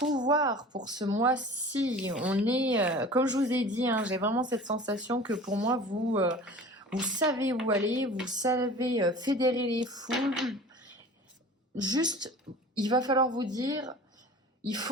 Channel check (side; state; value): both; normal; correlation 0.41